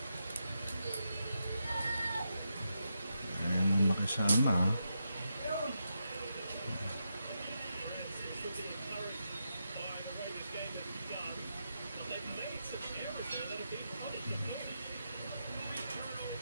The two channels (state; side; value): inverted; both; correlation -0.85